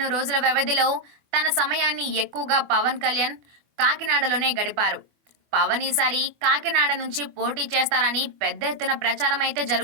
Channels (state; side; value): late; left; 25 ms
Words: రోజుల వ్యవధిలో తన సమయాన్ని ఎక్కువగా పవన్ కళ్యాణ్ కాకినాడలోనే గడిపారు. పవన్ ఈసారి కాకినాడ నుంచి పోటీ చేస్తారని పెద్ద ఎత్తున ప్రచారం అయితే